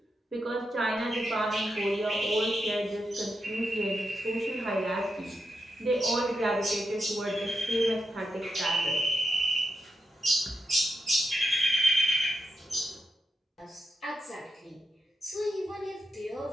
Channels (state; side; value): normal; both; correlation 0.86